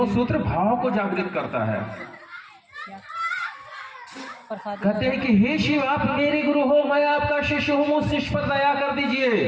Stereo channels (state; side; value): identical; both; correlation 1.00